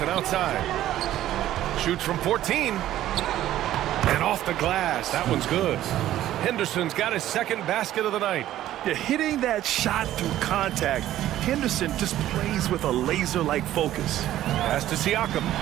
outside. Shoots from 14. And off the glass. That one's good. Henderson's got his second basket of the night. Yeah, hitting that shot through contact, Henderson just plays with a laser-like focus. Pass to Siakam.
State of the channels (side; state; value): left; quieter; 13.3 dB